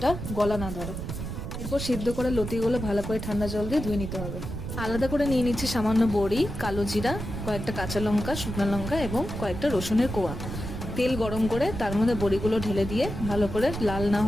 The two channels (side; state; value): right; noise; rumble, 6 dB below the sound